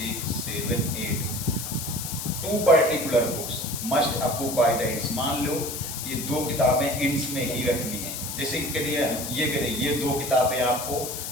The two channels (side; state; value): left; noise; hiss, 6 dB below the sound